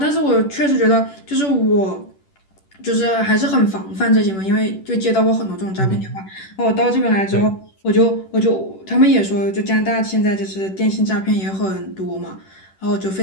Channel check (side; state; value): right; late; 10 ms